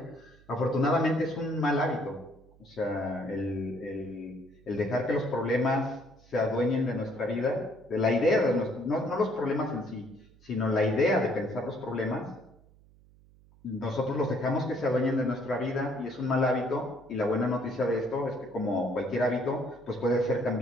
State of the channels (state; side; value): noise; right; hum, 27 dB below the sound